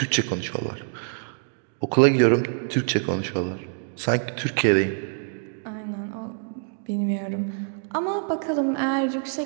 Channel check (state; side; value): silent; left; digital silence